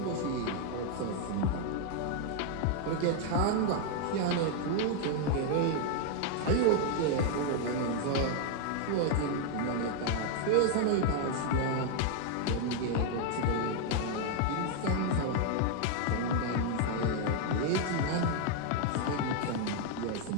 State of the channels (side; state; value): both; different; correlation 0.00